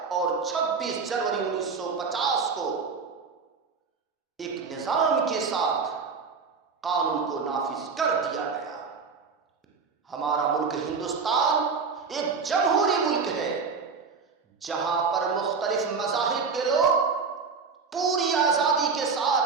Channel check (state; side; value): quieter; left; 5.1 dB